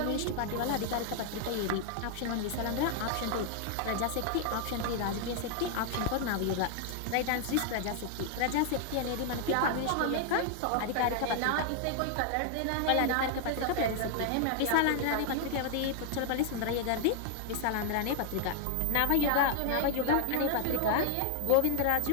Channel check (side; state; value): both; different; correlation 0.00